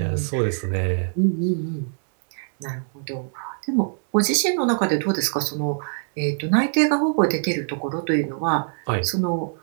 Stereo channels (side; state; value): left; silent; digital silence